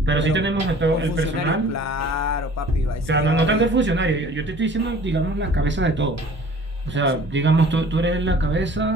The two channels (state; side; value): normal; both; correlation 0.49